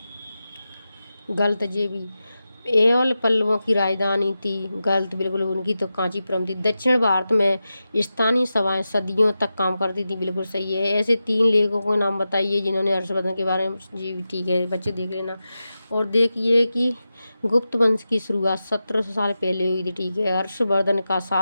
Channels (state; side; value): inverted; both; correlation -0.92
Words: गलत जे भी एवल पल्लवों की राजधानी थी। गलत, बिल्कुल उनकी तो कांचीपुरम थी। दक्षिण भारत में स्थानीय सभाएं सदियों तक काम करती थी। बिल्कुल सही है। ऐसे 3 लेखकों के नाम बताइए जिन्होंने हर्षवर्धन के बारे में। जी ठीक है बच्चे, देख लेना। और देखिए कि गुप्त वंश की शुरुआत 1700 साल पहले हुई थी। ठीक है। हर्षवर्धन का